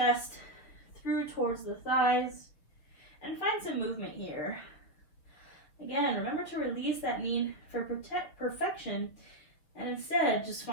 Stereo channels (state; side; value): late; right; 6.3 ms